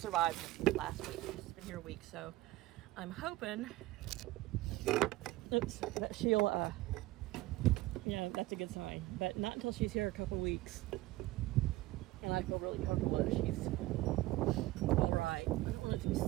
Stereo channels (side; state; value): left; quieter; 18.0 dB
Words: this last week. She's been here a week, so I'm hoping, that she'll, you know, that's a good sign. But not until she's here a couple weeks. And I feel really comfortable that she's all right. I don't want it to be